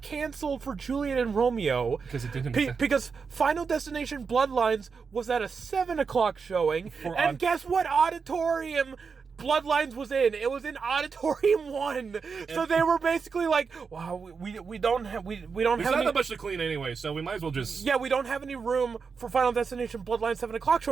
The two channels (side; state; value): left; quieter; 5.4 dB